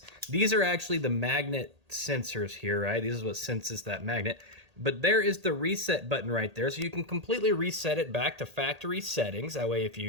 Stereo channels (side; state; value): left; late; 1.8 ms